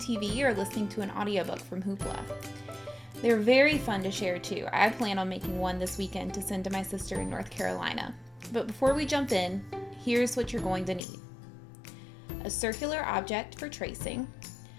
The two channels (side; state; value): right; drops out; at 11.0 s